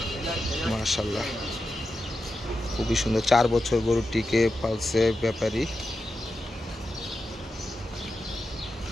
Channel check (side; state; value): both; normal; correlation 0.90